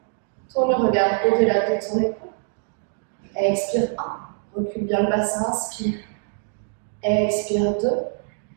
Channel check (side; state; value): left; silent; digital silence